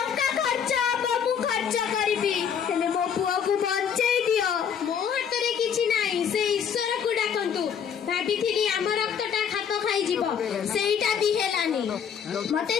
ଖର୍ଚ୍ଚ ହବ ମୁଁ ଖର୍ଚ୍ଚ କରିବି, ହେଲେ ମୋ ପୁଅକୁ ବଞ୍ଚେଇ ଦିଅ। ମୋ ହାତରେ କିଛି ନାହିଁ, ସେ ଈଶ୍ୱରକୁ ଡାକନ୍ତୁ। ଭାବିଥିଲି ଆମ ରକ୍ତଟା ଖାପ ଖାଇଯିବ, ସେଇଟା ବି ହେଲାନି। ମତେ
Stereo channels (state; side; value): quieter; right; 7.7 dB